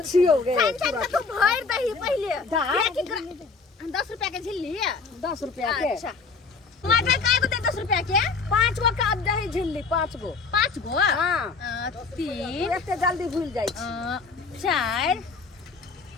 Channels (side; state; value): right; quieter; 4.7 dB